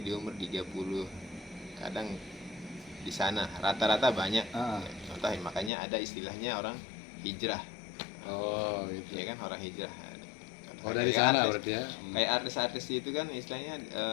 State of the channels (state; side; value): drops out; right; at 5.7 s